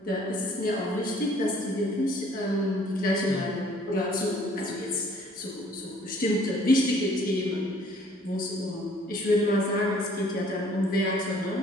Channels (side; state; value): both; normal; correlation 0.58